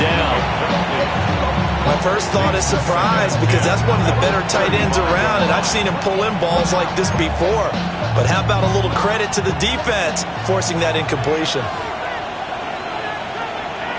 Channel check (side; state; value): both; identical; correlation 1.00